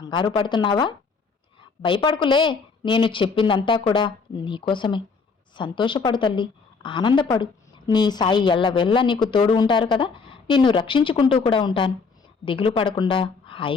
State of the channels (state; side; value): quieter; right; 4.8 dB